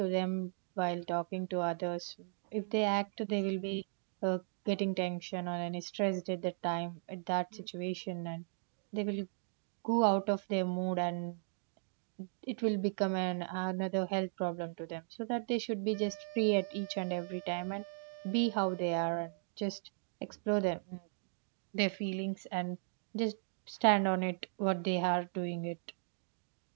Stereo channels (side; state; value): left; silent; digital silence